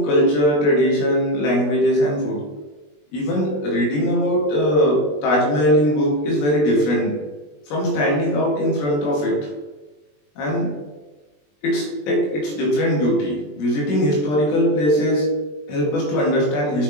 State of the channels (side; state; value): right; late; 20 ms